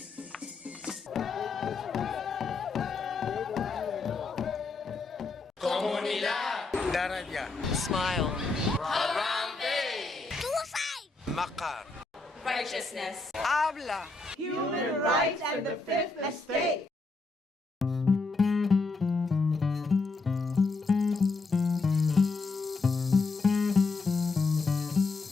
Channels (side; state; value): right; quieter; 3.6 dB